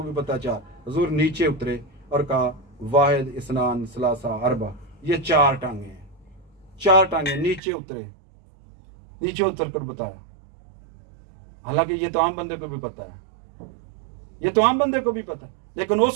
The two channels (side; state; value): left; drops out; at 7.6 s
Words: भी पता 4। हुजूर नीचे उतरे और कहा वाहिद इस्नान सलासा अरबा, ये 4 टांगे हैं, 4 टांगे। नीचे उतरे, नीचे उतर कर बताया। हालांकि ये तो आम बंदे को भी पता है, ये तो आम बंदे को भी पता है, लेकिन